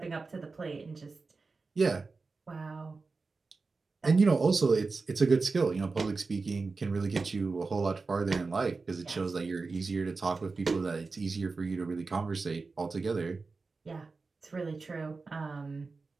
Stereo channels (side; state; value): left; quieter; 4.1 dB